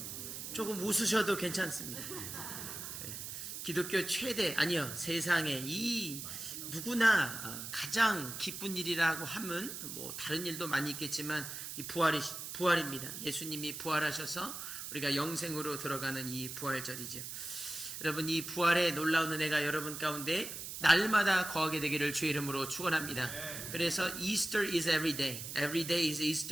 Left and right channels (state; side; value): noise; right; hiss, 7 dB below the sound